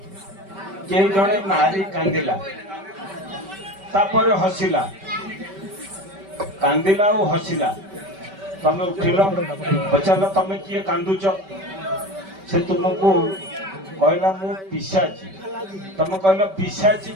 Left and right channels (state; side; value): late; left; 5.2 ms